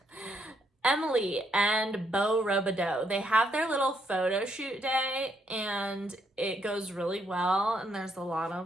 Emily and Beau Robideau, they have their little photo shoot day, and it goes really well, and there's a lot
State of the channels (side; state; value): both; normal; correlation 0.74